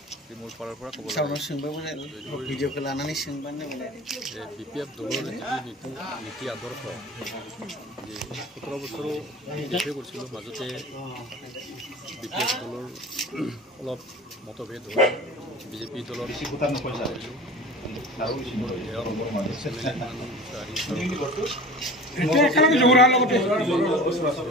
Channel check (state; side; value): normal; both; correlation 0.38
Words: মোৰ ফালৰ পৰা ক'ব BPF দলৰ নীতি আদৰ্শ যে 17 বছৰো DPF কৰিছিলোঁ, মাজতে BPF দলৰ অলপ মতভেদ হৈ BJP দলৰ